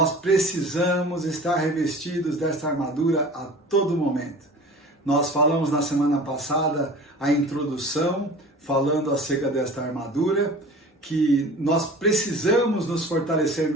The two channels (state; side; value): normal; both; correlation 0.41